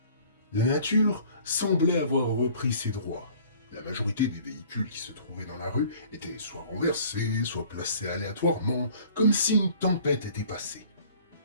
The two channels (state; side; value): inverted; both; correlation -0.51